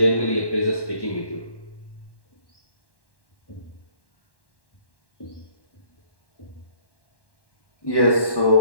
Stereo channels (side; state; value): right; late; 1.1 ms